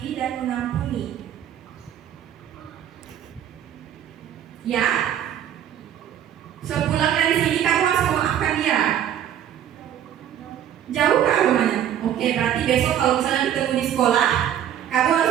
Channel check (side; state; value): left; quieter; 10.3 dB